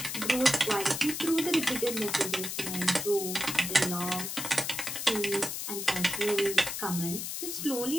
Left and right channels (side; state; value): left; noise; hiss, 4 dB below the sound